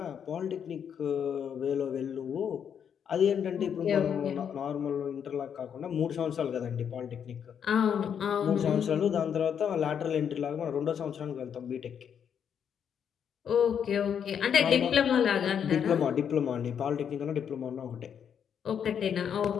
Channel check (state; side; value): quieter; right; 8.0 dB